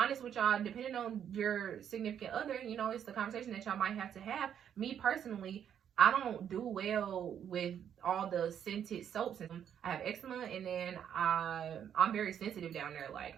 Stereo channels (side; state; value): left; quieter; 9.0 dB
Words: with y'all, depending on your significant other, it's the conversation that y'all might have to have. Me personally, I don't do well with all the scented soaps. I have eczema, and then I'm very sensitive down there. Like,